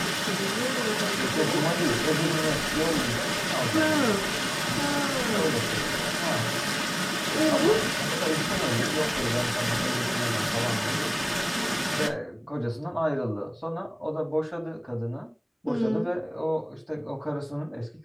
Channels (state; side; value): identical; both; correlation 1.00